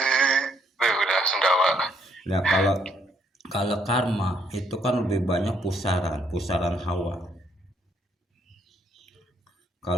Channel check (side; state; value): both; normal; correlation 0.70